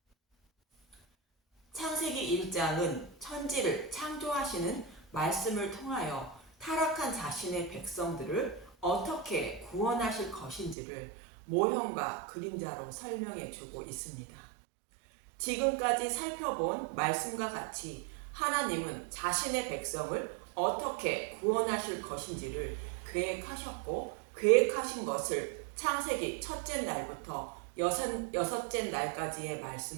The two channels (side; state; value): left; drops out; at 10.8 s